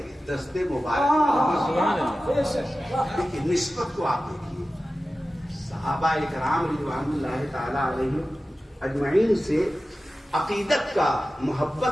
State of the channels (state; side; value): normal; both; correlation 0.95